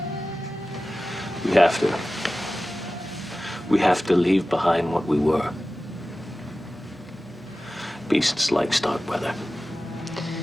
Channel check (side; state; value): both; normal; correlation 0.95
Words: We have to. We have to leave behind what we were. Beasts like Starkweather.